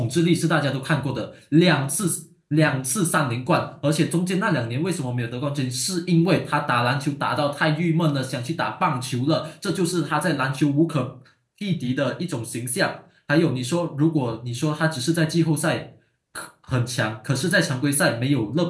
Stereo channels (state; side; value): identical; both; correlation 1.00